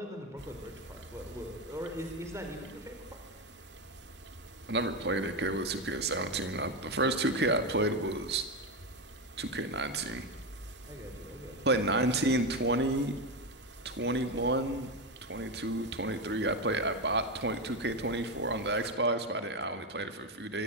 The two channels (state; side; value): normal; both; correlation 0.12